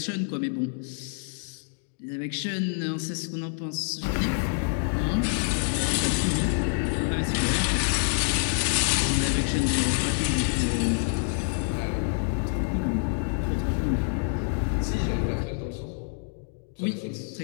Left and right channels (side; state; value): right; silent; digital silence